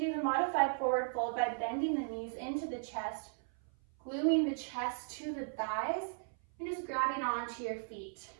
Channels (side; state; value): left; silent; 54 dB below the other